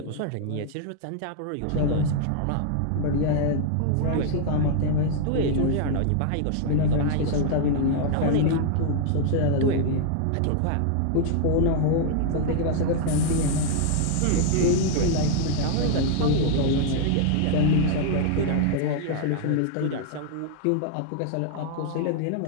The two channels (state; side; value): different; both; correlation 0.00